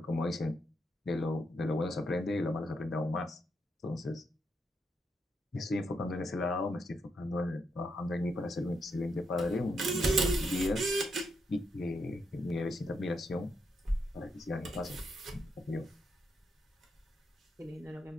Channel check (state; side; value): normal; both; correlation 0.80